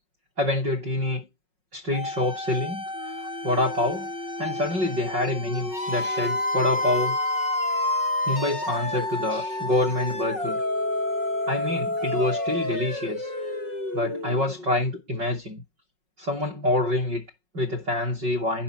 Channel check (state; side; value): late; left; 5.4 ms